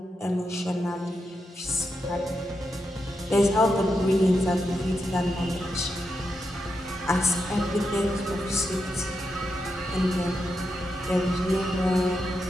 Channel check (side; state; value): both; normal; correlation 0.85